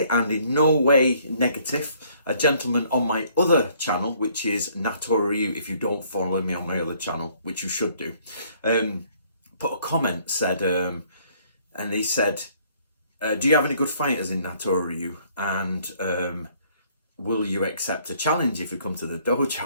and in no way negative, a gentleman on my other channel, which is Natori Ryu, if you don't follow me on my other channel, which you should do, put a comment, said, and he said, do you have any good fighters in Natori Ryu? And will you accept a challenge if you come to the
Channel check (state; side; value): inverted; both; correlation -0.62